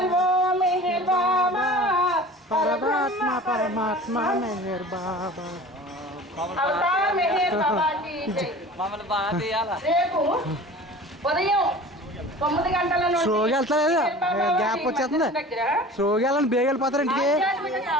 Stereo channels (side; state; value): both; normal; correlation 0.41